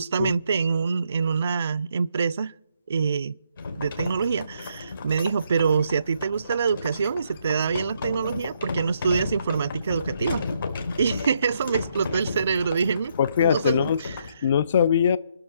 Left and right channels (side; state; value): both; inverted; correlation -0.74